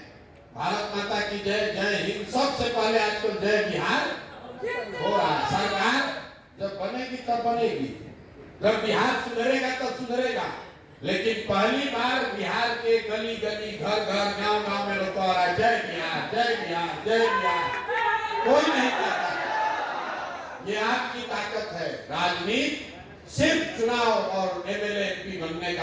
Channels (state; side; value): identical; both; correlation 1.00